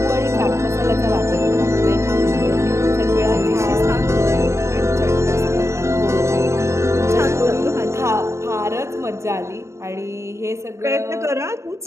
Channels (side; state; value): left; late; 0.14 ms